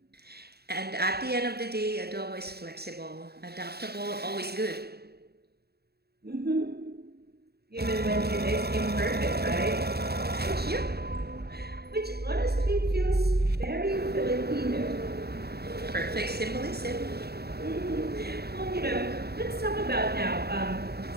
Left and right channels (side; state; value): left; late; 0.47 ms